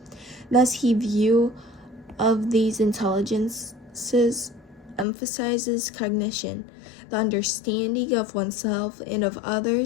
Thus, his view of these intelligences emphasizes cognition, the understanding of oneself and of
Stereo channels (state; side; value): drops out; right; at 5.1 s